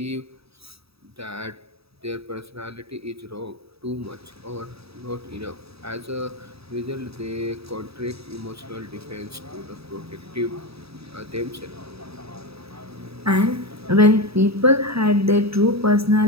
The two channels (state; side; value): late; left; 0.77 ms